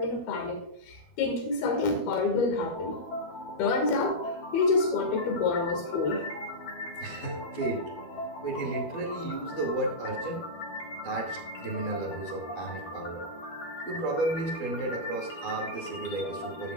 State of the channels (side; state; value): right; late; 12 ms